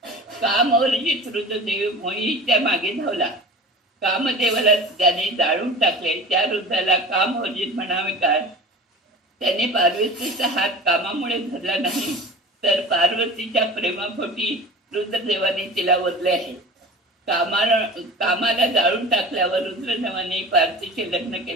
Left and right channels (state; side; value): normal; both; correlation 0.35